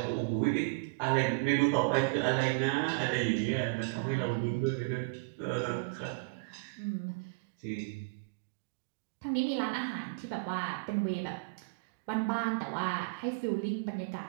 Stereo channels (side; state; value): left; quieter; 31.7 dB